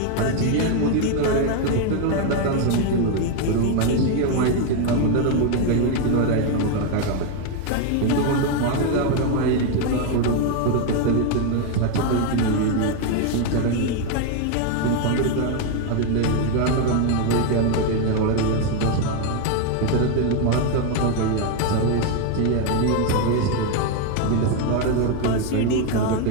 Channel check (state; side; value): different; both; correlation 0.01